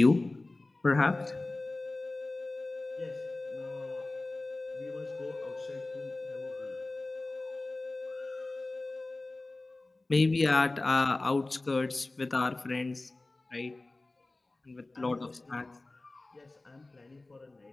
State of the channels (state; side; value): quieter; right; 3.0 dB